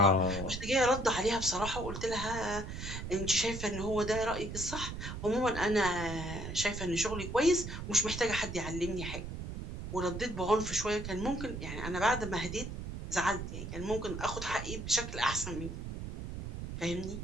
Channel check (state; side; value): noise; right; rumble, 7 dB below the sound